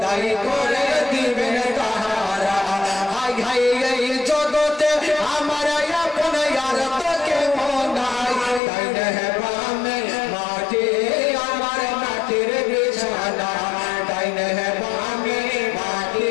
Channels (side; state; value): right; drops out; at 8.6 s